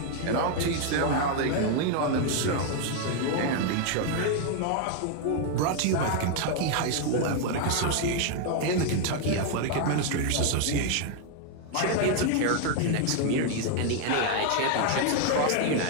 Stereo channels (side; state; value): both; different; correlation 0.00